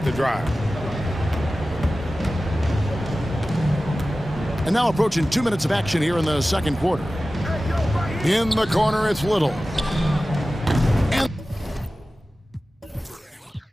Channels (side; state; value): both; normal; correlation 0.95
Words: the drive. And now approaching 2 minutes of action here in the second quarter. In the corner, it's Little. And